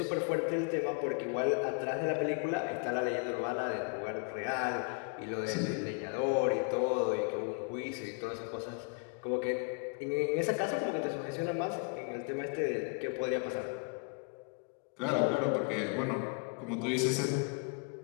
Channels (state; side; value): quieter; right; 36.1 dB